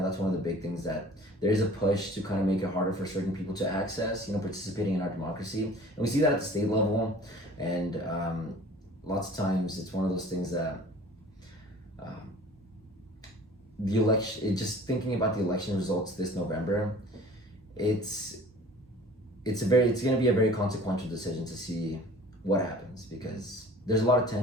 that's one of the big things that there is a push to kind of make it harder for certain people to access, participating in our democracy. And we see that at the state level. And lots of times it's one of those things that the election, just thinking about the election results this November, it's going to be a very consequential decision to see what happens, because there's a lot of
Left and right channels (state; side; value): normal; both; correlation 0.47